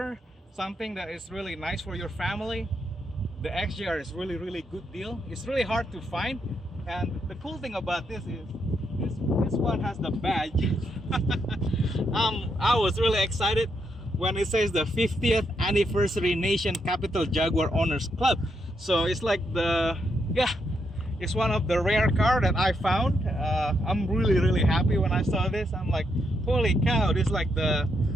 something that is really nice for your family, the XJR is really good deal. It's really hard to find, and the cool thing about this is this one has the badge. I was really excited when it says the 50th anniversary Nation Capital Jaguar Owners Club. So it's like the, yeah, it's one of the rare car that I found. I'm really happy when I saw this. I'm like, holy cow, this is like the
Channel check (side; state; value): both; normal; correlation 0.79